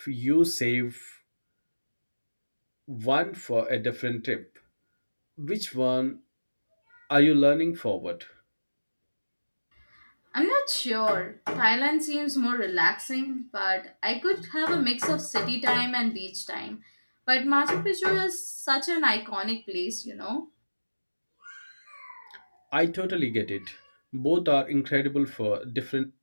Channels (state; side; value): inverted; both; correlation -1.00